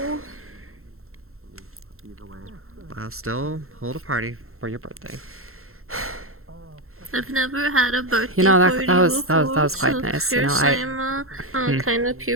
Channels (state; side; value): late; left; 0.62 ms